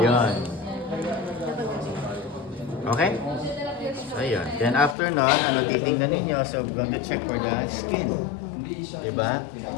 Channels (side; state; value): right; drops out; at 5.0 s